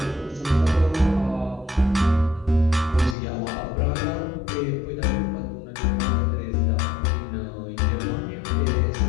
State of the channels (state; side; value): drops out; right; at 3.2 s